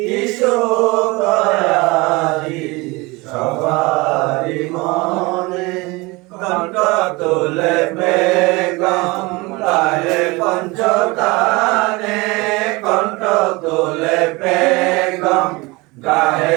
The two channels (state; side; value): quieter; left; 24.2 dB